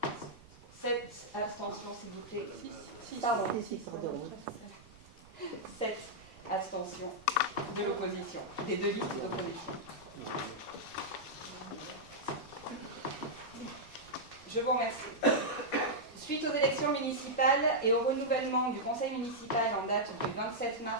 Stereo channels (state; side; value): noise; right; rumble, 23 dB below the sound